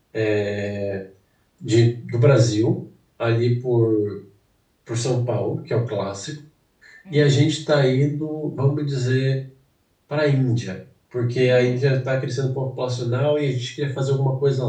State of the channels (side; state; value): both; identical; correlation 1.00